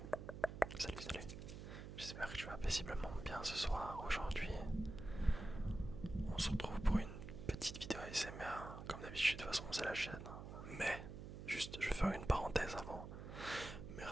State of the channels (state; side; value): noise; right; hum, 9 dB below the sound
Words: Salut, salut. J'espère que tu vas paisiblement bien ce soir. Aujourd'hui, on se retrouve pour une petite vidéo ASMR. Comme d'habitude, de toute façon, c'est la chaîne. Mais, juste, je vais faire une parenthèse avant.